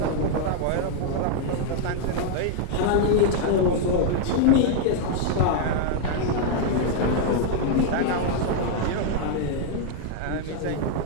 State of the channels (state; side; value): different; both; correlation 0.00